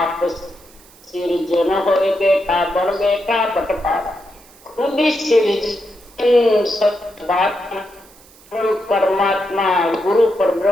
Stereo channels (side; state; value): right; noise; hiss, 25 dB below the sound